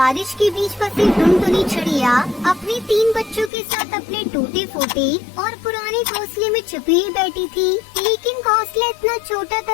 के बीच फंसी टुनटुनी चिड़िया अपने 3 बच्चों के साथ अपने टूटे फूटे और पुराने घोंसले में छुपी ही बैठी थी। लेकिन घोंसला इतना छोटा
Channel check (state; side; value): drops out; right; at 3.5 s